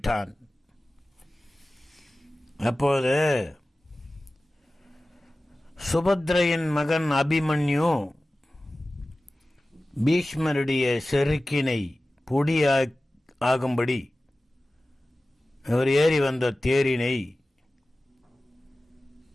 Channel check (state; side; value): normal; both; correlation 0.96